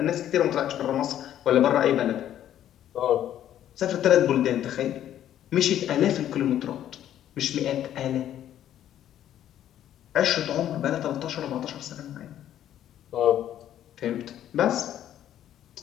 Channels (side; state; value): right; quieter; 11.3 dB